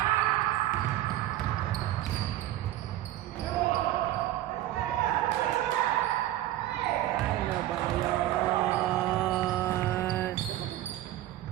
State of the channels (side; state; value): left; quieter; 14.2 dB